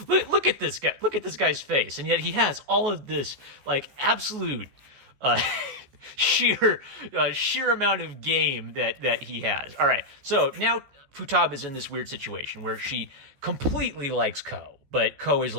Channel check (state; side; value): late; left; 14 ms